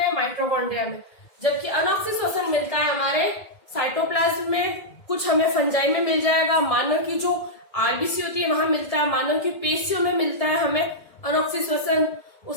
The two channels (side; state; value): right; late; 1.9 ms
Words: माइटोकॉन्ड्रिया में, जबकि अनऑक्सीश्वसन मिलता है हमारे साइटोप्लाज्म में, कुछ हमें फंजाई में मिल जाएगा, मानव की जो आरबीसी होती है वहां मिलता है, मानव की पेशियों में मिलता है हमें अनऑक्सीश्वसन,